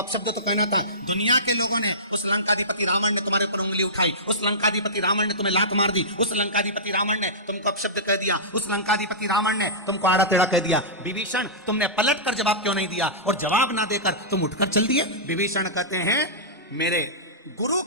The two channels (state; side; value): normal; both; correlation -0.19